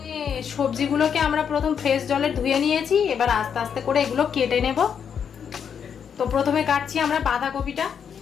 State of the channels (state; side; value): quieter; right; 7.5 dB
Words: সবজিগুলোকে আমরা প্রথম ফ্রেশ জলে ধুয়ে নিয়েছি, এবার আস্তে আস্তে করে এগুলো কেটে নেব। তো প্রথমে কাটছি আমরা বাঁধাকপিটা।